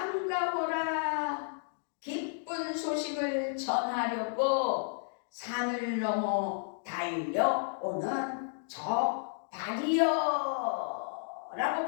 기쁜 소식을 전하려고 산을 넘어 달려오는 저 발이여 라고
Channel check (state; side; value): silent; right; digital silence